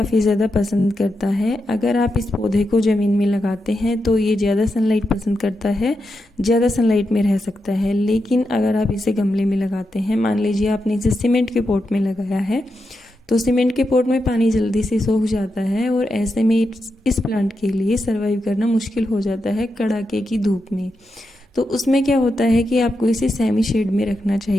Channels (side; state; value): both; normal; correlation 0.87